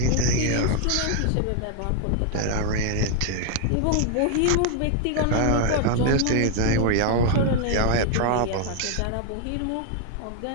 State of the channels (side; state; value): both; different; correlation 0.00